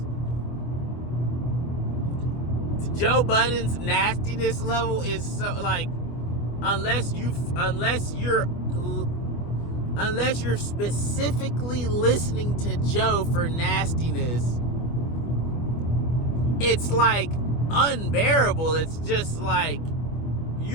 Joe Budden's nastiness level is so like unless you're specifically listening to Joe for nastiness, it's like unbearable. It's just like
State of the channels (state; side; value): late; right; 25 ms